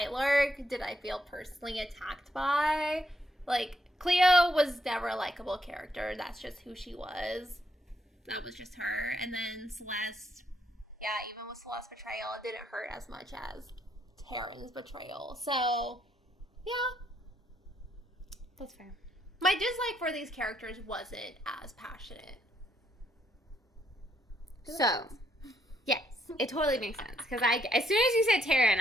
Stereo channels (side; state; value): both; normal; correlation 0.76